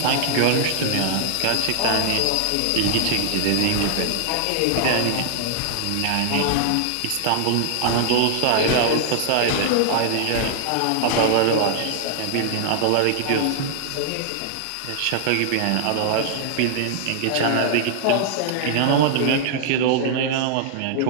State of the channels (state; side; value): different; both; correlation -0.01